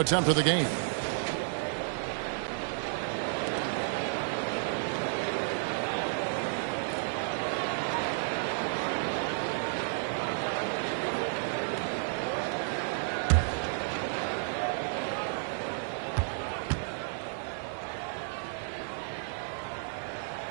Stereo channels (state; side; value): silent; left; 56 dB below the other